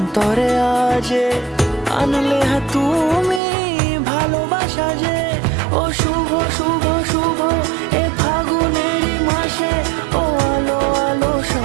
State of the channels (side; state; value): left; drops out; at 3.4 s